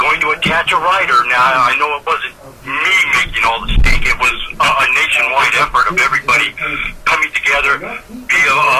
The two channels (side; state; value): both; identical; correlation 1.00